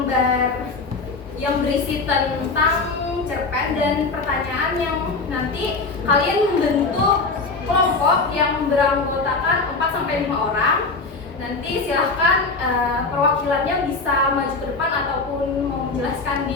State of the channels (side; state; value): right; quieter; 3.9 dB